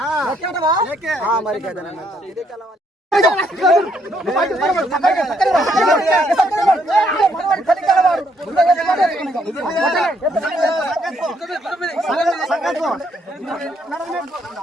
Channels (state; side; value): normal; both; correlation 0.71